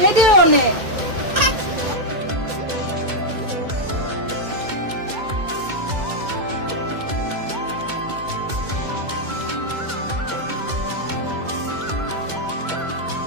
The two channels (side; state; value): left; late; 2.2 ms